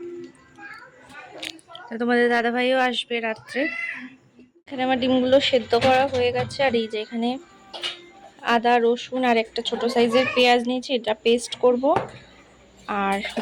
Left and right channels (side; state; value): both; identical; correlation 1.00